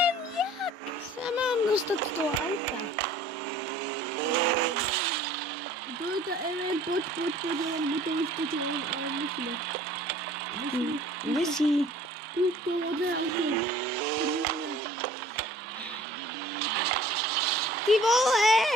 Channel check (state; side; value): normal; both; correlation 0.50